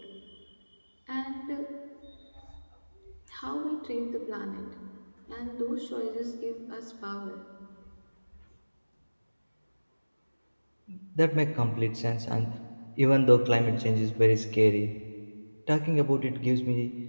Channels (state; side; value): inverted; both; correlation -1.00